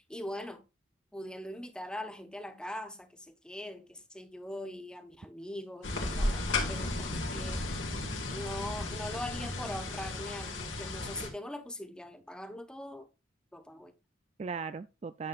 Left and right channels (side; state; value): both; normal; correlation 0.61